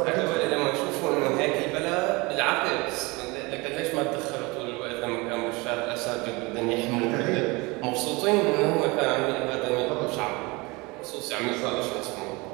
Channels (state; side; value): quieter; left; 25.1 dB